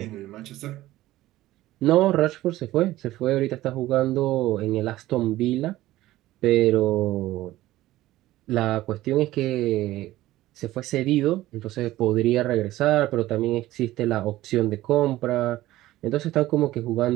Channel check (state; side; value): quieter; left; 16.0 dB